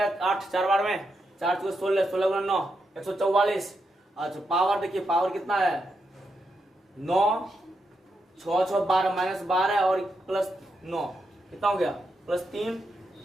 8 4 बार में, 4 × 16 16 × 9 144। अच्छा पावर देखिए, पावर कितना है 9 6 6 12 -12 और +9 कितना हो गया +3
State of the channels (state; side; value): normal; both; correlation 0.83